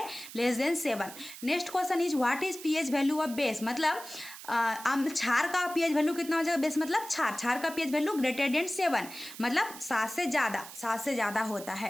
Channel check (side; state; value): right; noise; hiss, 14 dB below the sound